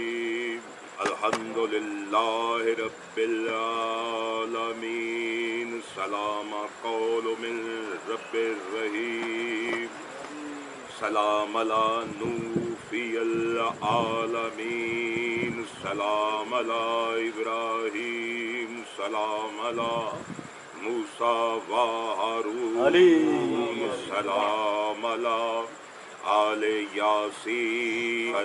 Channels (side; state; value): both; identical; correlation 1.00